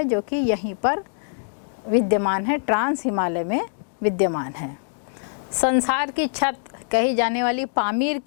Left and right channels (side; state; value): right; silent; digital silence